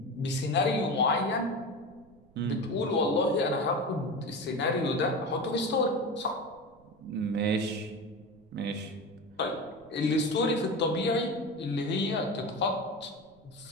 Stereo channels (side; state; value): right; noise; rumble, 28 dB below the sound